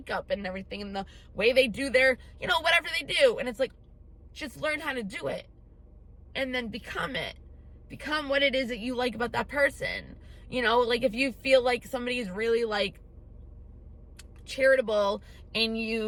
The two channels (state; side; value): identical; both; correlation 1.00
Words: and everything, and the way they do their, you know, whatever they do. And it's like, just learn how to do it and then become it. Become what it is that you like about that person. You know, like if you feel like somebody is really like charitable and